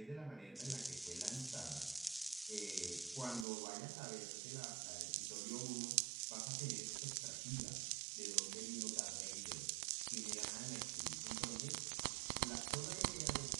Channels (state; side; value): drops out; left; at 3.5 s